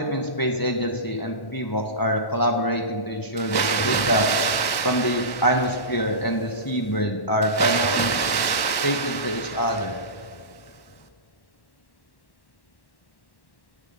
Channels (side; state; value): right; late; 1.1 ms